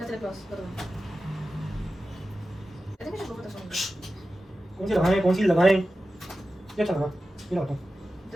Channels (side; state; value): both; normal; correlation 0.93